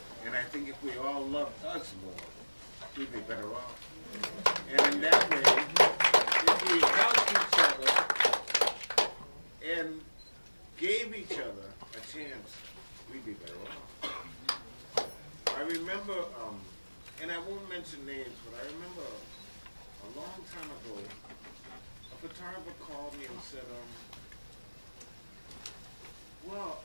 And I think if we all loved us more, we'd be better off. And in that way, if we helped each other and gave each other a chance, we'd be better off. I remember, and I won't mention names, but I remember a long time ago, a photographer called me and said, well,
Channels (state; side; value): inverted; both; correlation -1.00